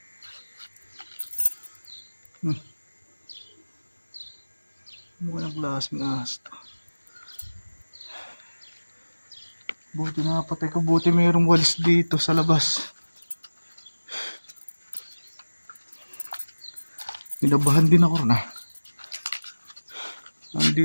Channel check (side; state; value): both; inverted; correlation -1.00